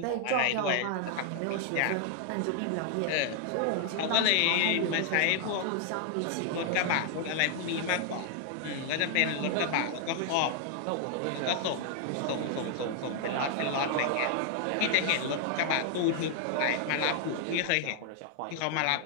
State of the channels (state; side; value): different; both; correlation 0.00